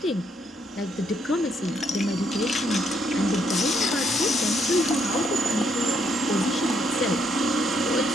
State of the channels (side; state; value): both; normal; correlation 0.72